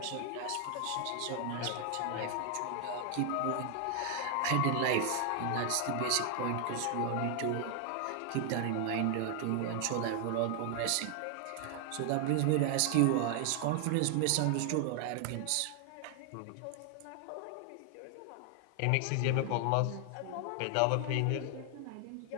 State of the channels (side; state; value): both; different; correlation 0.00